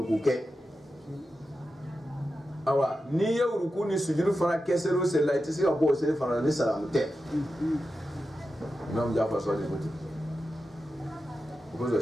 ke awa ni ya uruku ni sujudu fana ke sero se la itse ga bo se fana ni salamu te imam Jafar so de boti ko zo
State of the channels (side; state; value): both; normal; correlation 0.91